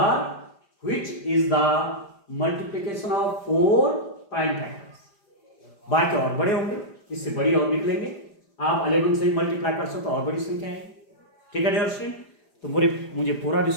which is the multiplication of 4 prime factors। बाकी और बड़े होंगे, इससे बड़ी और निकलेंगे, आप 11 से ही मल्टीप्लाई कर सकते हो और बड़ी संख्या है, ठीक है दोस्तों। तो मुझे पूरा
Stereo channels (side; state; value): right; late; 5.0 ms